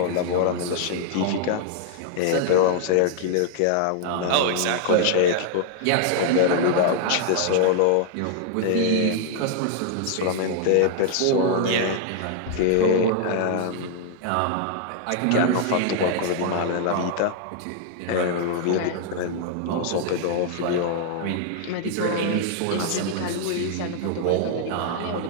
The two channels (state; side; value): different; both; correlation -0.01